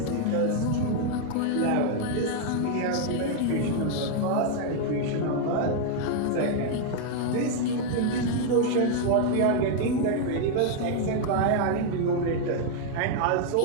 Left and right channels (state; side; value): different; both; correlation 0.00